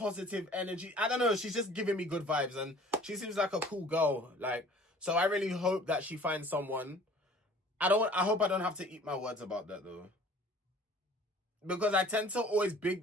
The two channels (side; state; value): both; normal; correlation 0.50